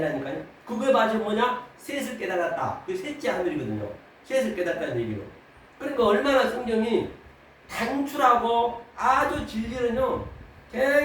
그거에 맞아 뭐냐? 셋을 깨달았다. 그 셋째 하늘이거든요. 셋을 깨달았다는 얘기로. 그러니까 얼마나 성경이 단출하고 아주 진리는요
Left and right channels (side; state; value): both; identical; correlation 1.00